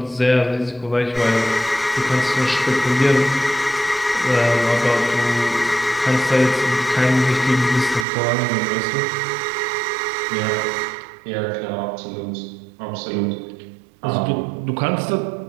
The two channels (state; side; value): drops out; left; at 8.1 s